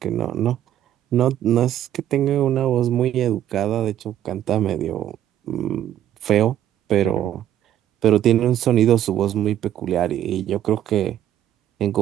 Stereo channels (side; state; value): left; quieter; 11.4 dB